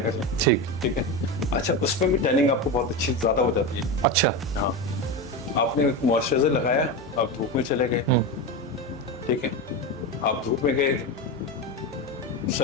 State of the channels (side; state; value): both; normal; correlation 0.18